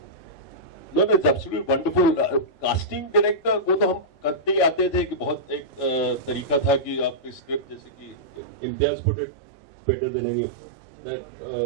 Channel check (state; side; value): drops out; left; at 8.4 s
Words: No, it's absolutely wonderful. Casting director को तो हम करते ही आते थे कि बहुत एक तरीका था कि आपकी स्क्रिप्ट, जैसे कि Imtiaz put it better than any, that